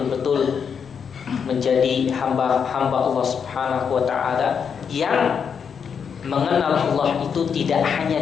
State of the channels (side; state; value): right; quieter; 6.8 dB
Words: menjadi hamba-hamba Allah Subhanahu wa taala yang mengenal Allah itu tidak hanya